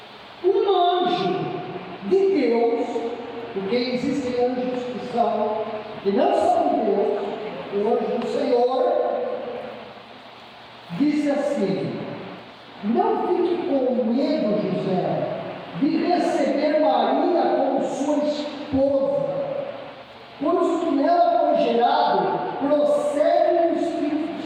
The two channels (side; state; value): both; identical; correlation 1.00